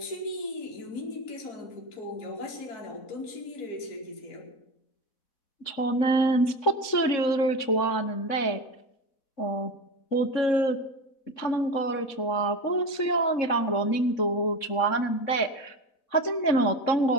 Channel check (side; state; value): right; late; 3.6 ms